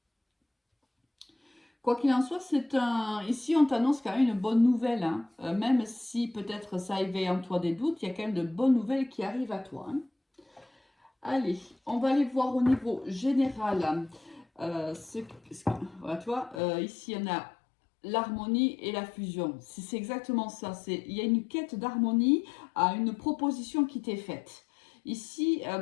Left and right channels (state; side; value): drops out; right; at 16.6 s